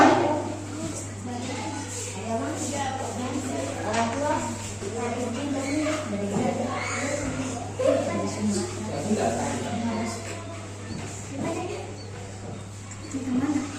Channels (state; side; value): identical; both; correlation 1.00